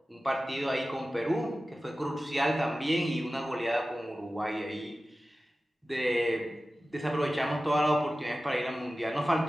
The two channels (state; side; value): normal; both; correlation 0.95